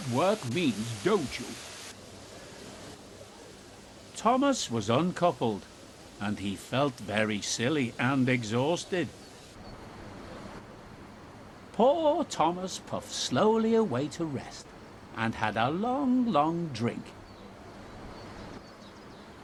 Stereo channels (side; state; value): both; identical; correlation 1.00